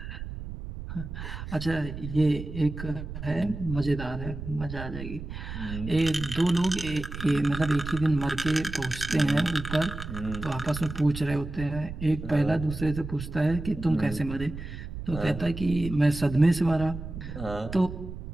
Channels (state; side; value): noise; right; rumble, 9 dB below the sound